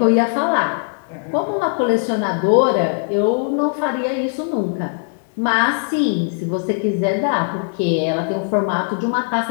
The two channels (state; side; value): silent; right; 61 dB below the other